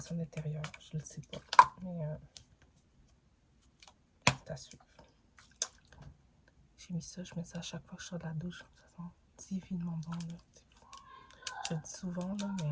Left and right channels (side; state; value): both; identical; correlation 1.00